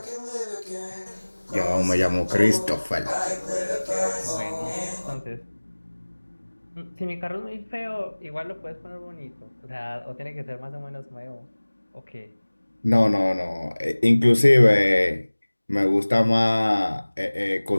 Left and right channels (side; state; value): both; inverted; correlation -1.00